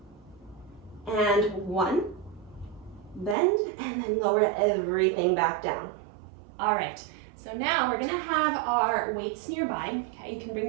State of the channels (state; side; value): drops out; left; at 3.4 s